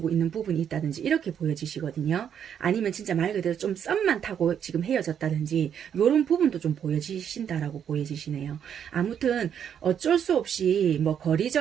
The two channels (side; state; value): left; quieter; 8.6 dB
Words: 있는 부분이 있다든지 이렇게 보여지시거든요. 아니면 진짜 말 그대로 좀 썸만 타고 지금 헤어졌다든지 이런 부분도 좀 보여지신다라고 보여지시네요. 아무튼 어쩔 수 없이 뭐